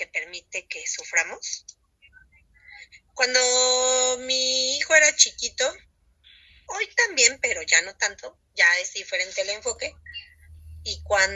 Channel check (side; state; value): both; identical; correlation 1.00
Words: permite que suframos? Cuando mi hijo era chiquito, hoy también, pero ya no tanto, ya es diferente el enfoque. Y